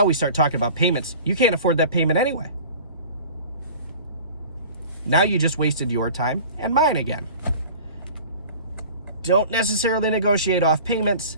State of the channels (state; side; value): inverted; both; correlation -0.42